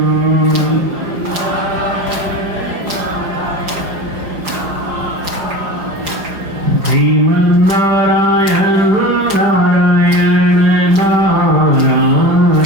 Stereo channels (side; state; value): left; late; 5.3 ms